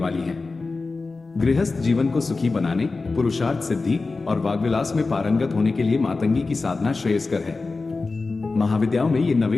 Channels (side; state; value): right; quieter; 3.8 dB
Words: है। गृहस्थ जीवन को सुखी बनाने, पुरुषार्थ सिद्धि और वाग्विलास में पारंगत होने के लिए मातंगी की साधना श्रेयस्कर है। महाविद्याओं में ये